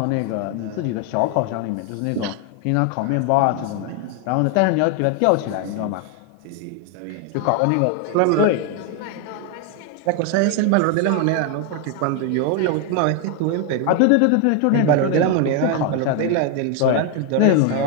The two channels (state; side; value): different; both; correlation 0.01